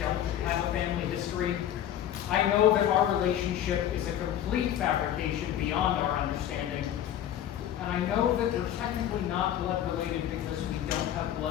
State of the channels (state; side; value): quieter; right; 11.0 dB